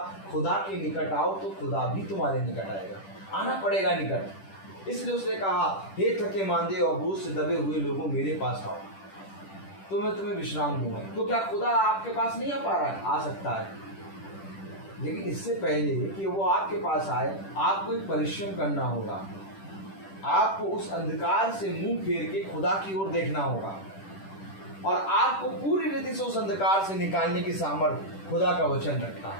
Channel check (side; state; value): right; late; 10 ms